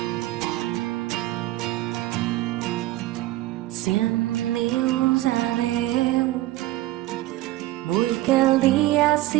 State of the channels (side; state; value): left; quieter; 16.5 dB